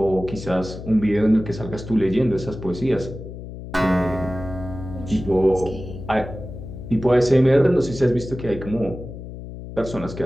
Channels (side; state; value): left; noise; hum, 11 dB below the sound